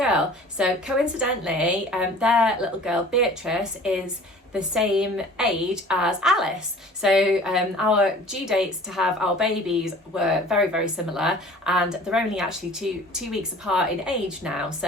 So coincidentally, their little girl Beatrice is the same age as Alice. So our due dates to have our babies were very, very similar, and they're only actually two weeks apart in age now.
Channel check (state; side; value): normal; both; correlation 0.46